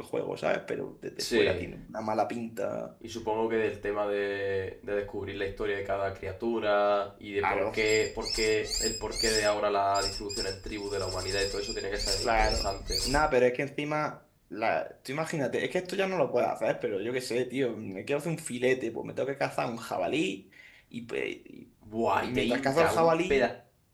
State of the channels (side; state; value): both; identical; correlation 1.00